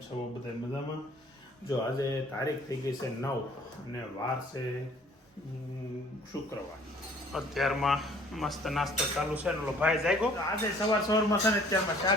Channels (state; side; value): normal; both; correlation 0.55